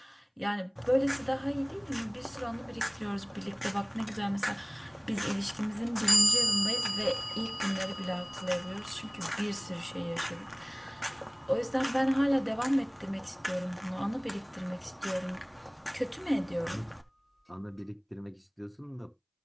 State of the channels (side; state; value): both; identical; correlation 1.00